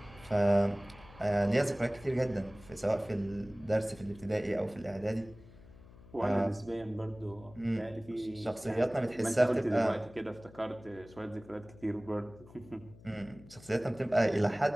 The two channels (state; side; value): noise; left; hum, 21 dB below the sound